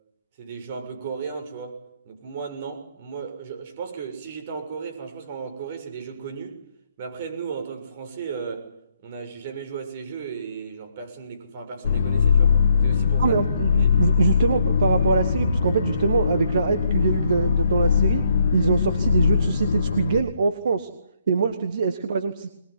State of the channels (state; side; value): inverted; both; correlation -0.72